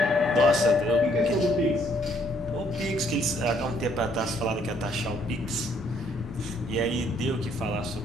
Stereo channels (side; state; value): both; normal; correlation 0.67